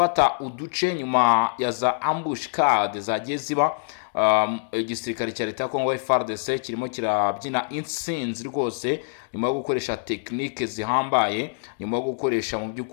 uduce nyuma ya za ambushcade zagiye ziba. Igisirikare cya leta ya Kongo FARDC kirimo kirabyina intsinzi rwose nyuma yo gukoresha tekinike zihambaye, nyuma yo gukoresha mu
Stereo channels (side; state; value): right; silent; digital silence